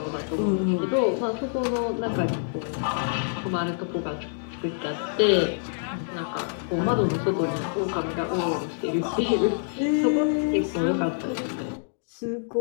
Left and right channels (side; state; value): right; silent; digital silence